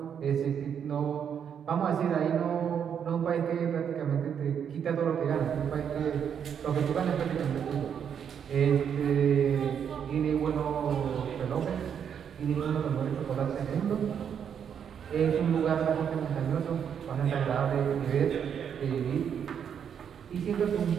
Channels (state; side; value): quieter; left; 8.0 dB